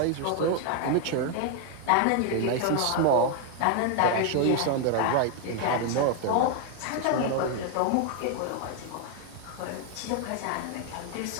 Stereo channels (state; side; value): different; both; correlation 0.01